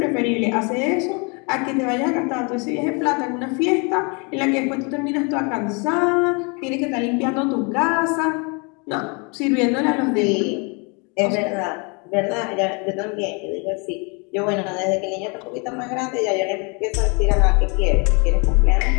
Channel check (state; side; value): quieter; right; 32.4 dB